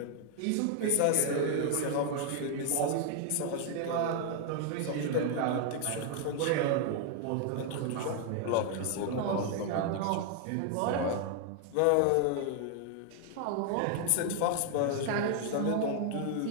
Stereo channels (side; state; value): both; different; correlation 0.00